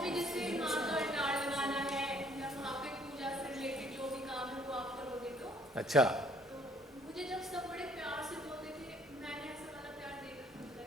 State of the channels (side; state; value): both; normal; correlation 0.61